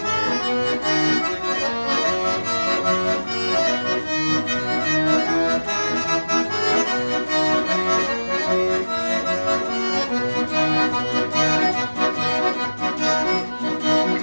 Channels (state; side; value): inverted; both; correlation -1.00